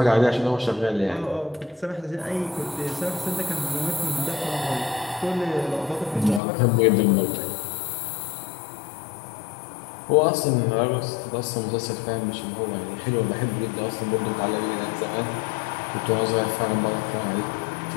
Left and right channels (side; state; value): right; drops out; at 6.4 s